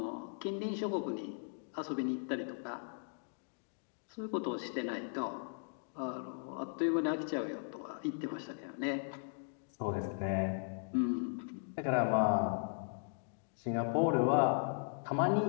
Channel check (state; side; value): silent; right; digital silence